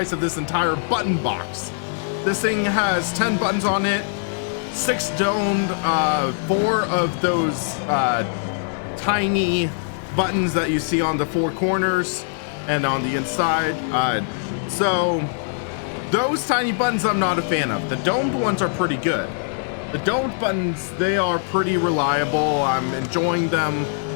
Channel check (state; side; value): silent; right; digital silence